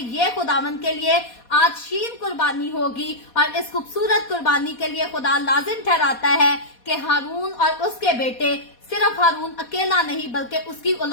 ये खुदावंद के लिए आज शीन कुर्बानी होगी। और इस खूबसूरत कुर्बानी के लिए खुदा लाजिम ठहराता है कि हारून और उसके बेटे, सिर्फ हारून अकेला नहीं बल्कि उसकी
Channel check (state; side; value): late; right; 4.2 ms